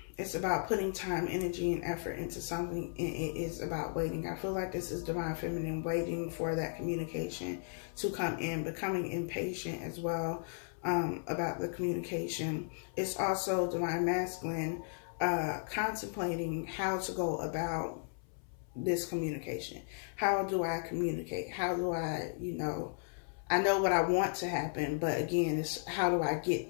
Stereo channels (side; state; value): right; silent; 54 dB below the other